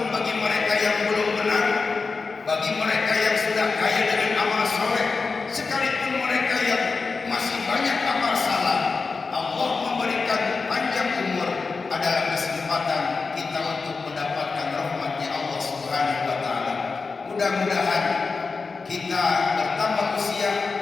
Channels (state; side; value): quieter; right; 4.4 dB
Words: bagi mereka yang belum benar, bagi mereka yang sudah kaya dengan amal soleh, sekalipun mereka yang masih banyak amal salah. Allah memberikan panjang umur adalah kesempatan kita untuk mendapatkan rahmatnya Allah Subhanahu wa taala. Mudah-mudahan kita bertambah usia,